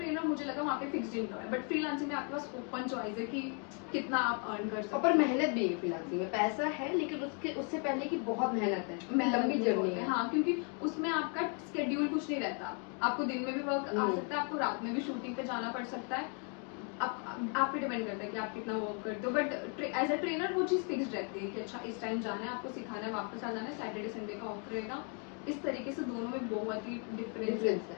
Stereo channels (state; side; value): quieter; right; 39.3 dB